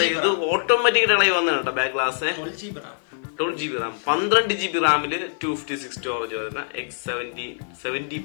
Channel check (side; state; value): right; silent; 57 dB below the other